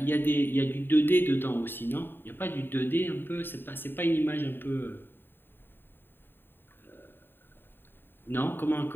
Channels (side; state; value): right; late; 0.098 ms